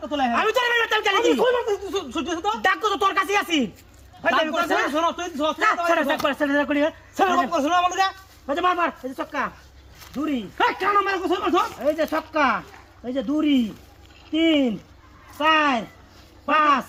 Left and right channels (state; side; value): identical; both; correlation 1.00